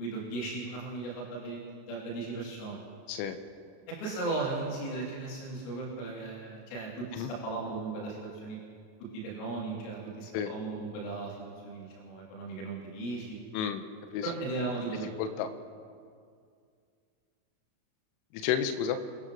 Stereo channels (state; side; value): late; right; 37 ms